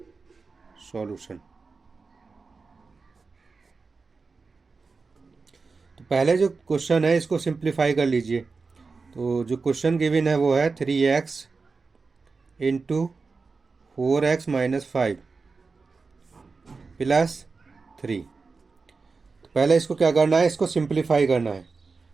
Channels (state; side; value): quieter; left; 4.4 dB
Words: सॉल्यूशन। तो पहले जो क्वेश्चन है इसको सिंप्लीफाई कर लीजिए। तो जो क्वेश्चन गिवन है वो है 3x into 4x minus 5 plus 3। तो पहले इसको क्या करना है, इसको सिंप्लीफाई करना है।